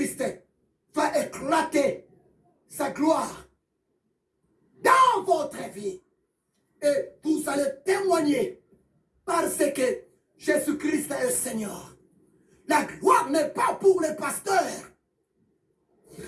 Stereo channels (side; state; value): both; identical; correlation 1.00